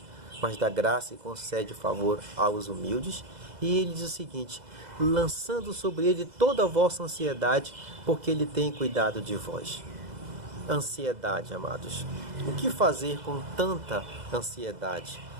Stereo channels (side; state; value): left; late; 2.0 ms